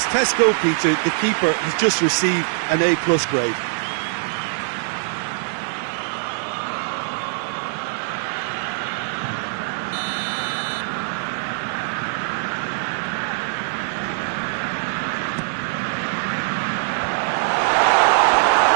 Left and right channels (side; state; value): left; silent; digital silence